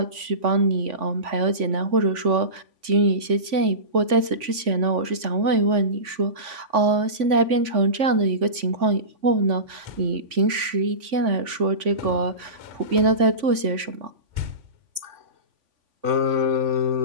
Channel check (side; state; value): left; late; 3.5 ms